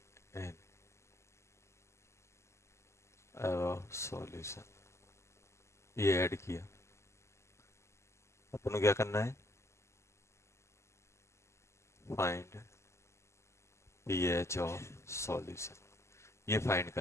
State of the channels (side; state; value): right; late; 0.13 ms